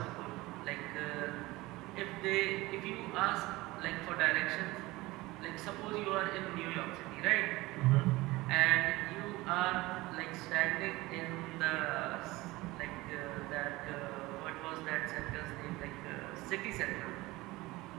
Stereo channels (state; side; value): quieter; left; 20.2 dB